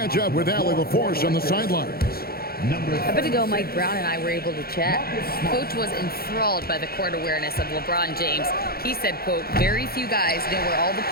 up with Allie LaForce on the sidelines. A bit ago, Mike Brown and I were able to chat. Coach was enthralled by the court awareness of LeBron James. He said, quote, "Very few guys know where all the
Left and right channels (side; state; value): right; late; 0.44 ms